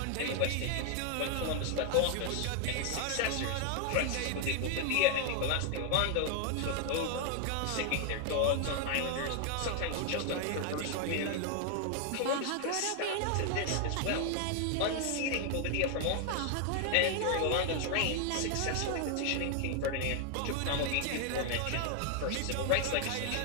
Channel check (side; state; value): both; different; correlation 0.00